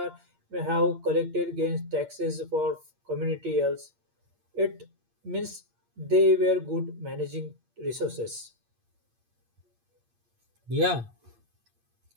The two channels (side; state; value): left; late; 8.6 ms